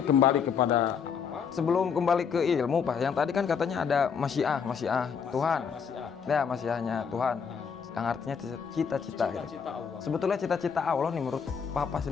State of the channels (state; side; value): quieter; right; 6.6 dB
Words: kembali kepada sebelum kembali ke ilmu Pak, yang tadi kan katanya ada masyiah Tuhan. Ya, masyiahnya Tuhan. Yang artinya cita-cita gitu. Sebetulnya cita-cita Allah nih menurut Papa